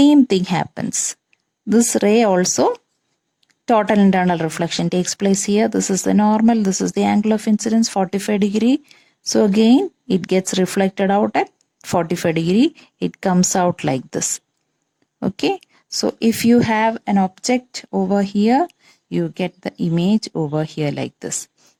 thing happens. This ray also, total internal reflection takes place here. This is the normal. This is the angle of incidence, 45 degree. So again, it gets reflected out at 45 degree. It comes out like this. Okay. So if you have an object over here, you get the image over here like this.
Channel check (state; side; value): identical; both; correlation 1.00